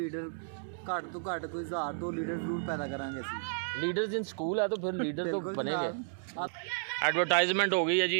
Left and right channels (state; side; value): silent; left; digital silence